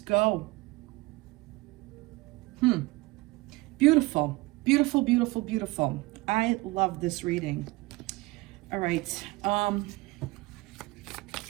go. Beautiful, beautiful, beautiful, beautiful. I love this reading. All right.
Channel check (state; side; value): quieter; left; 22.0 dB